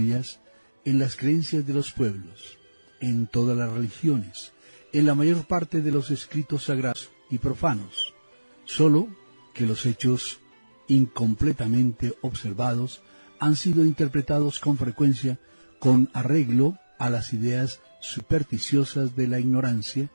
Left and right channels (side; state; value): both; inverted; correlation -1.00